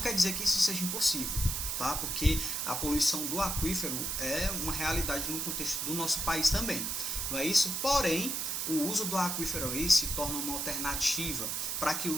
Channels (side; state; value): right; noise; hiss, 1 dB below the sound